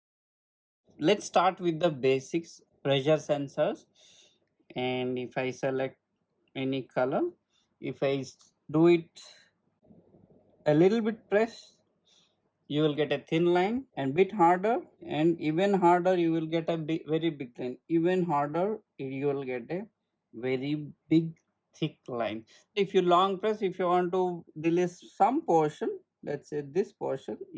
Let's start with the basics. Pressure sensors, and if I select any color, if I do it a little bit press, you will get a thin line, and bit harder and even harder you will get a very big line. Even harder you will get a very big thick line. If you long press, if you want to release some portion, let's say this portion,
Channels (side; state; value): both; identical; correlation 1.00